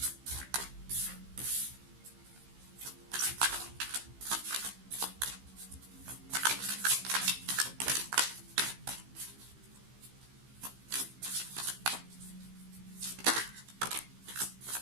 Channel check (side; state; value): left; late; 15 ms